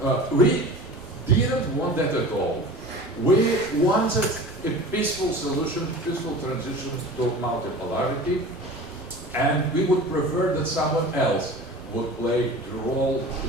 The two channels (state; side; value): normal; both; correlation 0.38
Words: We didn't want that at all. We wanted a peaceful solution, peaceful transition to multipolarity, and we would prefer that someone else would play the role